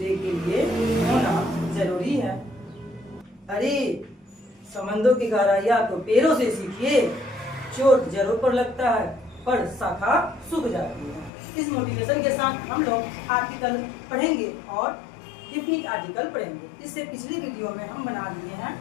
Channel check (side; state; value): right; drops out; at 11.3 s